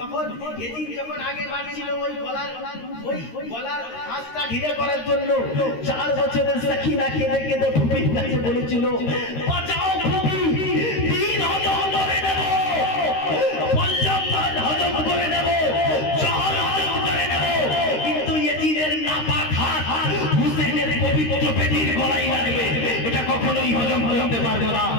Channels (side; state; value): right; late; 13 ms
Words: এদিন যখন আগে বাড়ছিল ওই গলার ফাঁসটা ঢিলে করার জন্য 4 বছরের সাকিনা কেঁদে কেঁদে ভূমির কাছে বলেছিল, বাঁচাও ভূমি, দিন হজম করে নেব, পঞ্চম মান হজম করে নেব, জহর হজম করে নেব, কিন্তু এজিদের নাপাক হাত হুসেনের পবিত্র পেটির গলায় লাগবে, এটা কখনোই হজম করতে পারবো না।